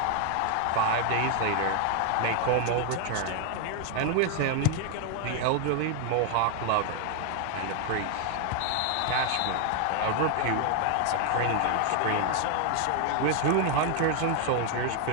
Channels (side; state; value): both; different; correlation 0.00